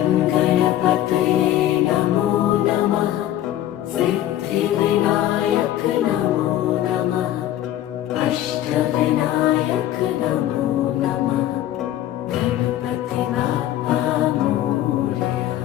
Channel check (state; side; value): quieter; right; 12.7 dB